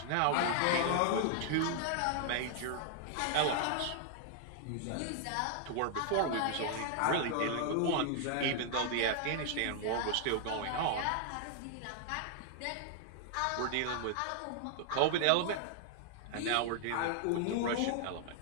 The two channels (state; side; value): different; both; correlation 0.00